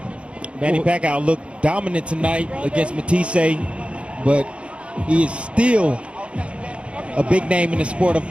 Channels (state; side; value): late; left; 0.059 ms